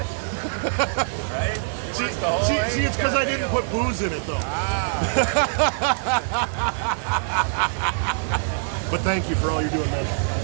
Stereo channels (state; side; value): silent; left; 63 dB below the other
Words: Right? See, it's because I didn't put booze in it, though. But thank you for all you're doing, man.